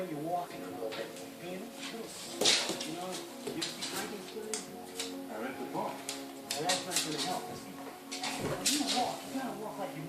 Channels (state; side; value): identical; both; correlation 1.00